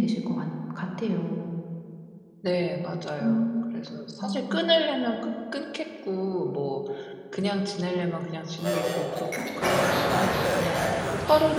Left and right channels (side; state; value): both; identical; correlation 1.00